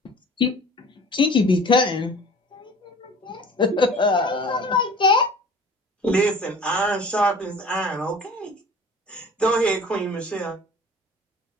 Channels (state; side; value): normal; both; correlation 0.45